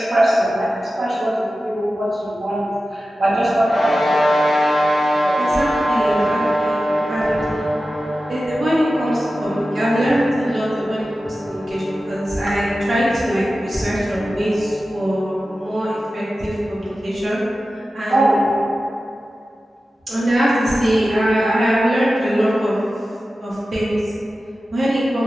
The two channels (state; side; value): normal; both; correlation 0.94